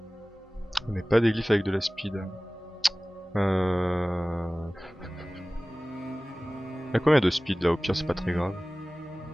On n'est pas des glyphes avec de la speed. Il y a combien de speed là? Au pire, c'est pas très grave.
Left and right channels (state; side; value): normal; both; correlation 0.98